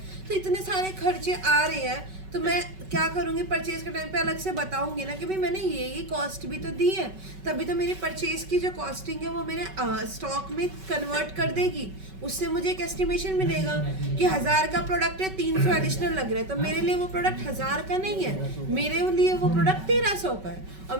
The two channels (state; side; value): late; left; 5.3 ms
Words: तो इतने सारे खर्चे आ रहे हैं। तो मैं क्या करूँगी, परचेज के टाइम पे अलग से बताऊंगी ना कि भाई मैंने ये कॉस्ट भी तो दी है, तभी तो मेरी परचेज की जो कॉस्टिंग है वो मेरे स्टॉक में कन्वर्ट कर देगी। उससे मुझे एक एस्टिमेशन मिलेगा कि 1000 का प्रोडक्ट है, 300 एडिशनल लग रहा है, तो मेरे लिए वो प्रोडक्ट 1000 का नहीं है, मेरे लिए वो प्रोडक्ट 1300 का है। और